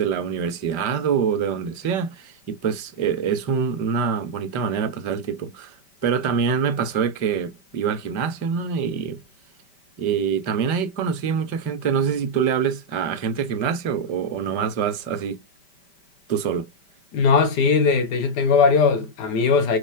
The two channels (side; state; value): right; late; 5.1 ms